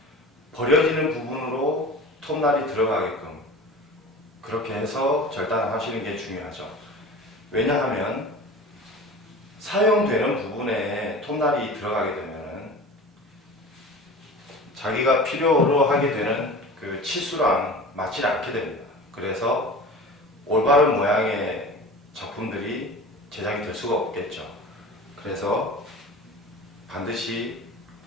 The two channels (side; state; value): both; normal; correlation 0.36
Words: 버려지는 부분으로 톱날이 들어가게끔 그렇게 해서 절단을 하시는 게 중요하죠. 왜냐하면 사용되는 부분에 톱날이 들어가게 되면 자기가 필요로 하게 되는 그 치수랑 맞지 않게 됩니다. 그래서 올바른 모양의 작품들이 제작이 될 수가 없겠죠. 그래서 반드시